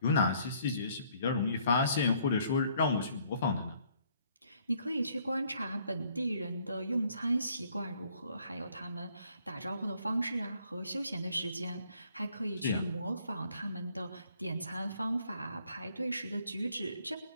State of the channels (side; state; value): both; inverted; correlation -0.65